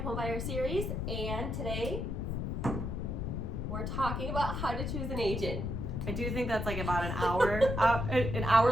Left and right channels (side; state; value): left; noise; rumble, 2 dB below the sound